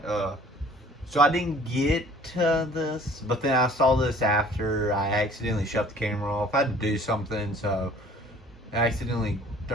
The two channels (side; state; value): both; normal; correlation 0.52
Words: So I didn't get to this, but then I saw this after I accidentally shut the camera off. I had to do something, so I accidentally